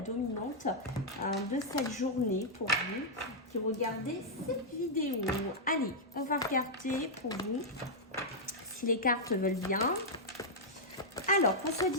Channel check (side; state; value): both; normal; correlation -0.06